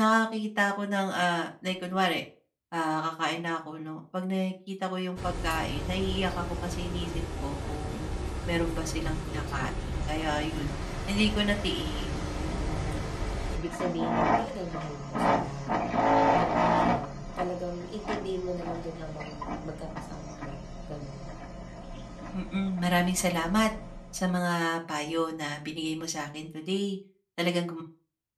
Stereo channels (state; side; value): identical; both; correlation 1.00